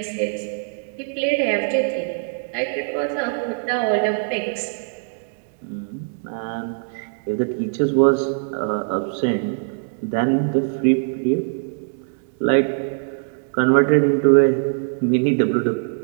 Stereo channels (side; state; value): left; silent; digital silence